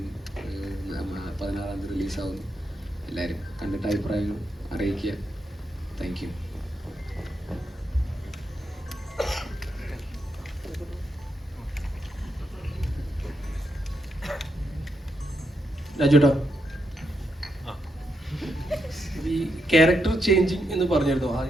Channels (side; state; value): both; normal; correlation 0.82